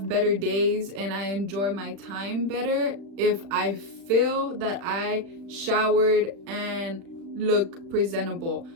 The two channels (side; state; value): left; late; 36 ms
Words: better days and I enjoy my time better if I feel that I showered and look presentable.